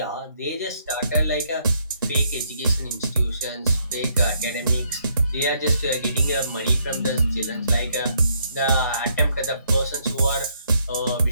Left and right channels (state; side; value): inverted; both; correlation -0.72